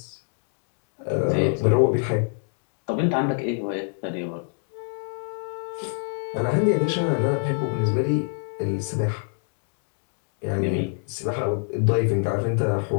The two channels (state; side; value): silent; right; 57 dB below the other